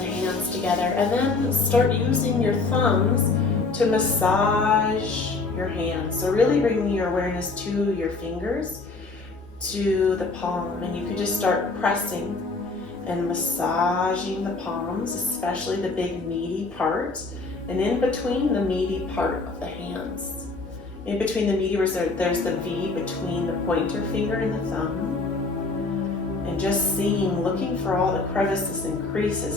hands together, and then start using your thumbs to massage your hands. So really bringing your awareness to your fingers, to the palm, and you can just start pressing and massaging the palms, especially the big meaty parts, and in between the meaty part of the hands. In between the meaty, there's the V between the pointer finger and the thumb. And just seeing, looking for all the crevices and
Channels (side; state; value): right; quieter; 3.8 dB